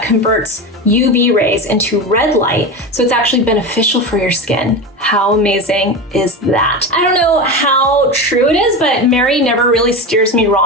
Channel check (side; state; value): both; normal; correlation 0.22